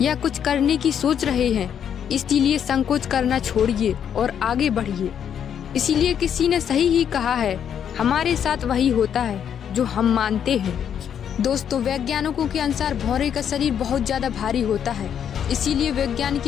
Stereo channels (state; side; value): quieter; right; 8.7 dB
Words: या कुछ करने की सोच रहे हैं। इसीलिए संकोच करना छोड़िए और आगे बढ़िए। इसीलिए किसी ने सही ही कहा है, हमारे साथ वही होता है जो हम मानते हैं। दोस्तों, वैज्ञानिकों के अनुसार भौरे का शरीर बहुत ज्यादा भारी होता है, इसीलिए वैज्ञानिक